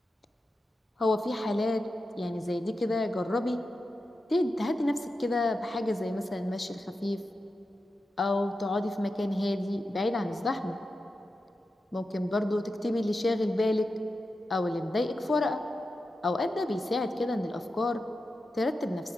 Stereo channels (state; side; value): normal; both; correlation 0.91